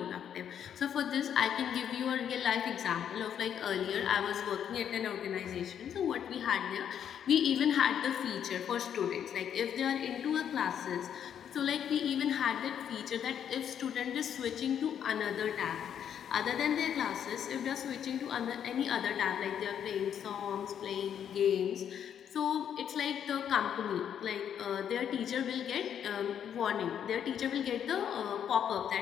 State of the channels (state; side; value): quieter; right; 8.9 dB